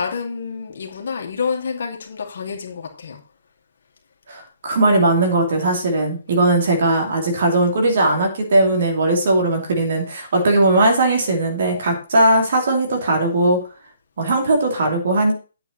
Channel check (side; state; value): both; inverted; correlation -0.64